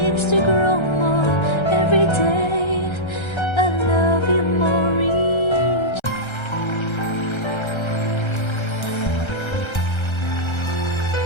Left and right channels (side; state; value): right; late; 1.3 ms